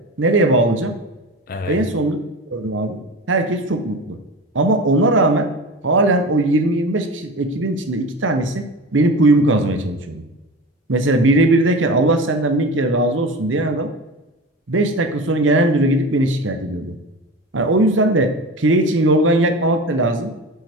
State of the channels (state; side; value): normal; both; correlation 0.30